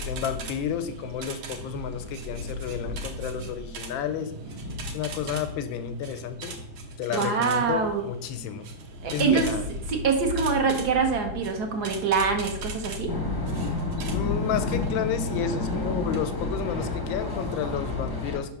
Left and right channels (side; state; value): both; normal; correlation -0.06